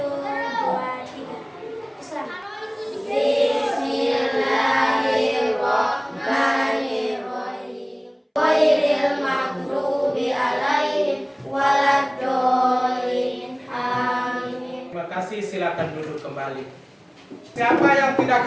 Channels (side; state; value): both; identical; correlation 1.00